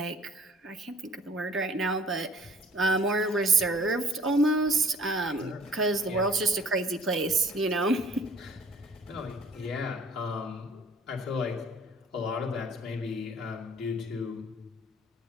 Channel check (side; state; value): both; normal; correlation 0.53